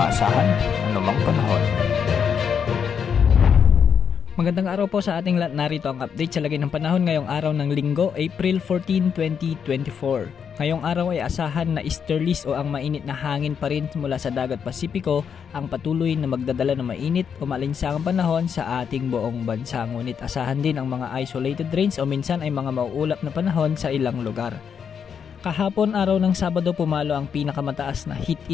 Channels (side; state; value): right; quieter; 7.2 dB